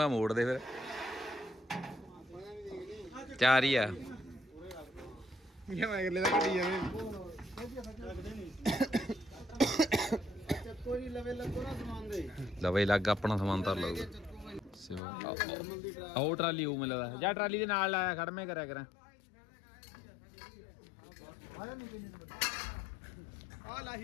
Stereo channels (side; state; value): right; drops out; at 15.0 s